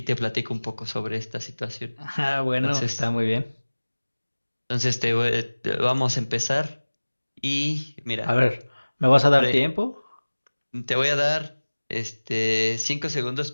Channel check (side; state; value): both; inverted; correlation -1.00